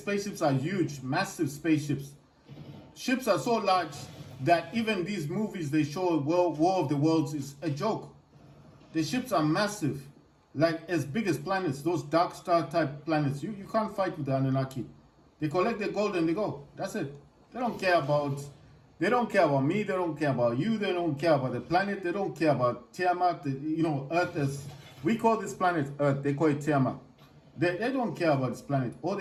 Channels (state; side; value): identical; both; correlation 1.00